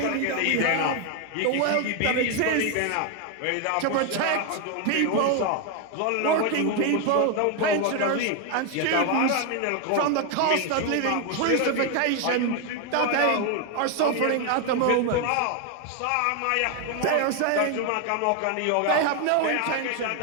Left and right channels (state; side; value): different; both; correlation 0.01